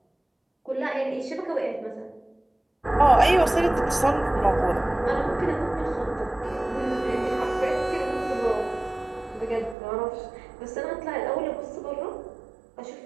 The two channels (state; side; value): drops out; left; at 9.8 s